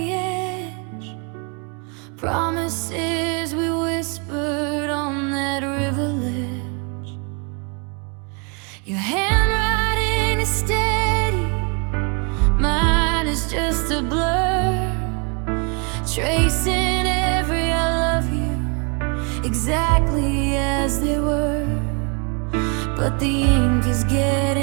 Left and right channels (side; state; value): left; quieter; 34.6 dB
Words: edge, promises we whispered on that river ledge. Your handwriting is steady, mine is just a blur, tracing every I love you exactly as they were. But the ink is